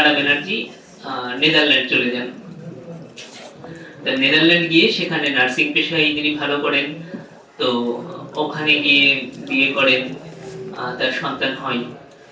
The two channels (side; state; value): both; identical; correlation 1.00